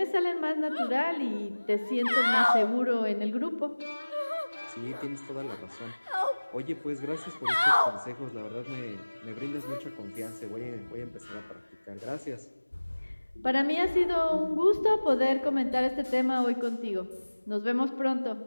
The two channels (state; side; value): inverted; both; correlation -1.00